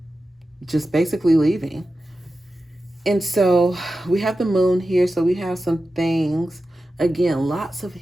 just basically leaving. And so we have the moon here. So we have some things, again, lots of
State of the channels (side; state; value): both; normal; correlation 0.93